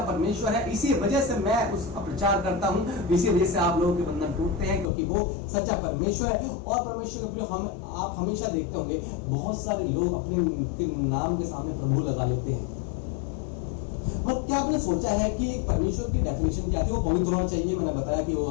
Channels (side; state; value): right; drops out; at 4.9 s